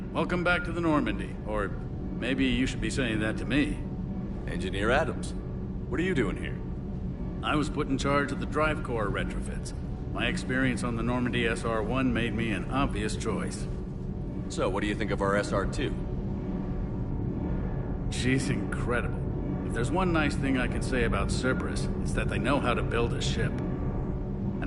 welcome back to the Normandy. Or maybe you should be saying that to me. Engineer Adams, what are you doing here? I was put in charge of the drive core retrofits. My experience on the Normandy SR-1 made me an obvious choice. So, what do you think of our SR-2? She's incredible. If there's one nice thing I can say about Cerberus, it's that they know how to build a ship. And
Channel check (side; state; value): both; identical; correlation 1.00